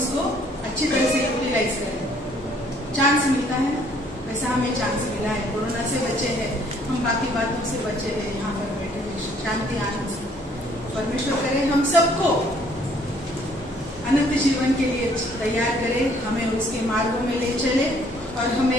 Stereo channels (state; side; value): normal; both; correlation 0.62